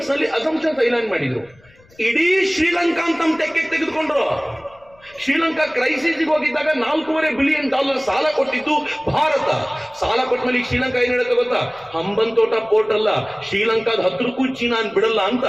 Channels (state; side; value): noise; left; rumble, 29 dB below the sound